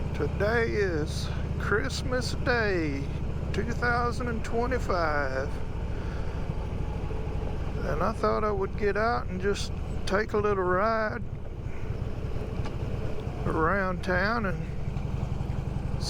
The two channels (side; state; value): both; identical; correlation 1.00